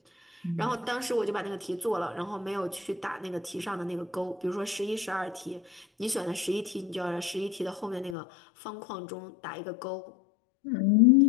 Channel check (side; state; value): right; drops out; at 8.2 s